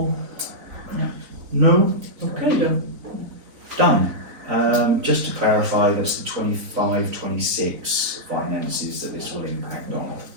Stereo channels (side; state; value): left; late; 3.9 ms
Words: No? Okay then. Done. Just to clarify, that's the 25-26 finances that this will impact on.